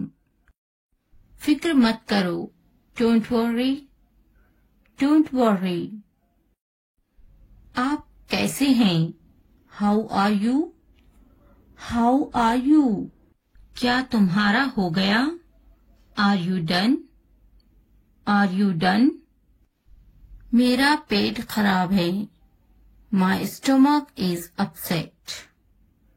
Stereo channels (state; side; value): identical; both; correlation 1.00